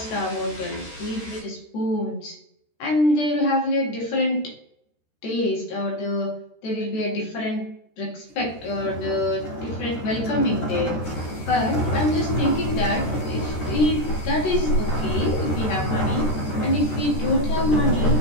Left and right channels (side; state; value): right; late; 13 ms